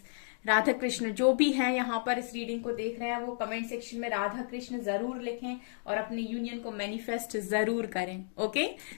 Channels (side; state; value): right; silent; digital silence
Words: Radha Krishna जो भी हैं यहाँ पर इस रीडिंग को देख रहे हैं वो कमेंट सेक्शन में राधा कृष्ण जरूर लिखें और अपने यूनियन को मैनिफेस्ट जरूर करें। ओके